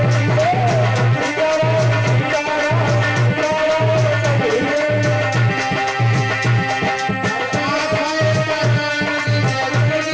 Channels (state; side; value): identical; both; correlation 1.00